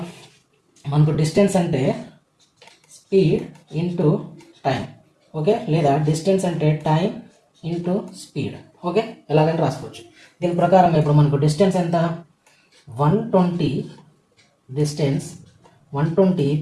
మనకు డిస్టెన్స్ అంటే స్పీడ్ ఇంటూ టైం. ఓకే, లేదా డిస్టెన్స్ అంటే టైం ఇంటూ స్పీడ్. ఓకే, ఎలాగంటే రాసుకోవచ్చు. దీని ప్రకారం ఇప్పుడు మనకు డిస్టెన్స్ ఎంత, 120 డిస్టెన్స్ 120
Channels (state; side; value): identical; both; correlation 1.00